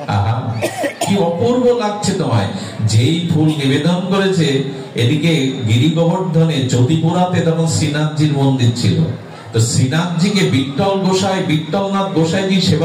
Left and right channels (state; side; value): identical; both; correlation 1.00